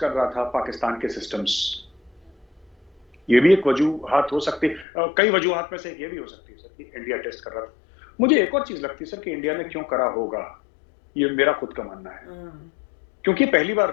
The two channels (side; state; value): right; drops out; at 4.9 s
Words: कर रहा था पाकिस्तान के सिस्टम्स। ये भी एक वजूहात हो सकती है, कई वजूहात में से एक ये भी हो सकती है सर कि इंडिया टेस्ट कर रहा था। मुझे एक और चीज लगती है सर कि इंडिया ने क्यों करा होगा, ये मेरा खुद का मानना है, क्योंकि पहली